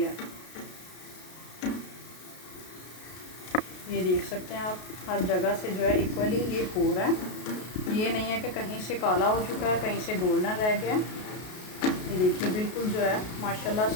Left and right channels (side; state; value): right; late; 33 ms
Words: है। ये देख सकते हैं आप, हर जगह से जो है इक्वली ये हो रहा है। ये नहीं है कि कहीं से काला हो चुका है, कहीं से गोल्डन रह गया। ये देखिए बिल्कुल जो है माशाल्लाह